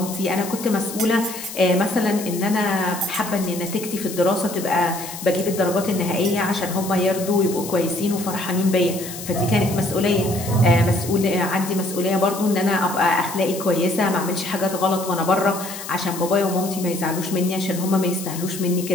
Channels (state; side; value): noise; left; hiss, 11 dB below the sound